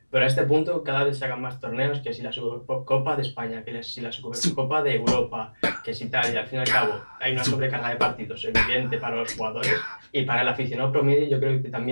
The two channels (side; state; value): both; inverted; correlation -1.00